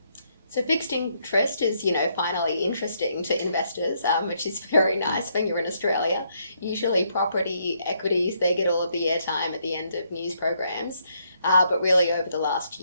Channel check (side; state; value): both; inverted; correlation -0.74